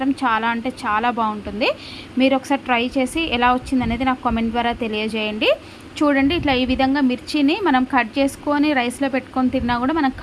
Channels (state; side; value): identical; both; correlation 1.00